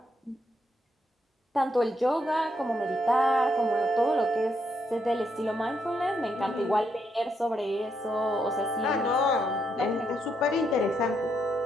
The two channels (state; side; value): normal; both; correlation 0.77